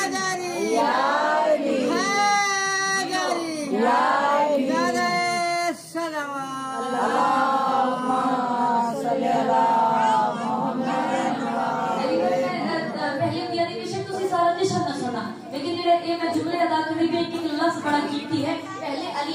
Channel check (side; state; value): both; identical; correlation 1.00